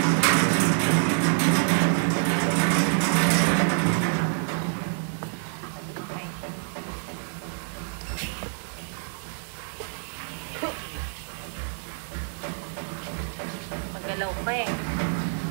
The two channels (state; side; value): silent; left; 60 dB below the other